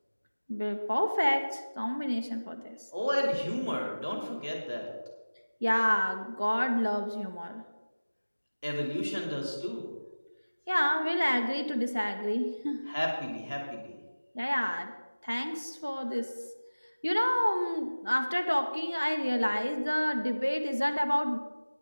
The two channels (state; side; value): inverted; both; correlation -1.00